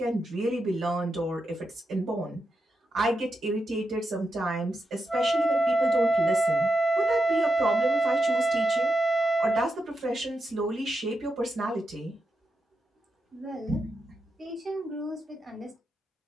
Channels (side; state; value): both; normal; correlation 0.86